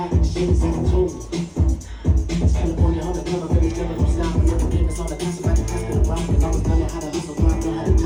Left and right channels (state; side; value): identical; both; correlation 1.00